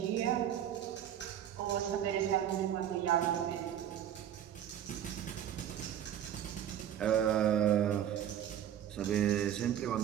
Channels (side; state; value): left; quieter; 10.4 dB